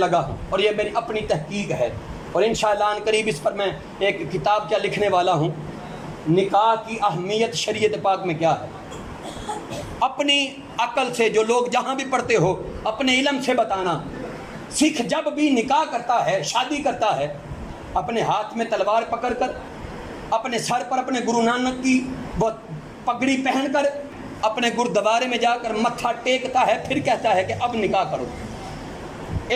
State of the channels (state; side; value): identical; both; correlation 1.00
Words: ہوں, اور یہ میری اپنی تحقیق ہے, اور انشاءاللہ ان قریب اس پر میں ایک کتاب کیا لکھنے والا ہوں, نکاح کی اہمیت شریعت پاک میں کیا ہے. اپنی عقل سے جو لوگ جہاں بھی پڑھتے ہو اپنے علم سے بتانا. سکھ جب بھی نکاح کرتا ہے, شادی کرتا ہے, اپنے ہاتھ میں تلوار پکڑ کر, اپنے سر پر اپنے گرو نانک کی وہ پگڑی پہن کر, اپنے گردوارے میں جا کر متھا ٹیکتا ہے, پھر کہتا ہے کہ اب نکاح کرو.